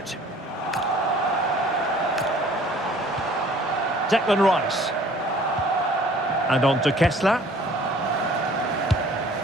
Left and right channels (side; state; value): both; normal; correlation 0.53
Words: Declan Rice. And on to Kessler.